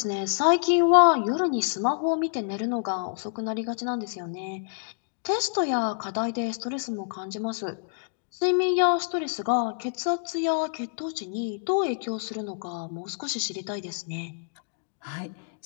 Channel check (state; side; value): silent; right; digital silence